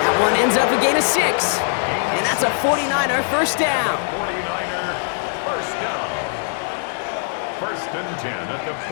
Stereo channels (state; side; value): silent; right; 63 dB below the other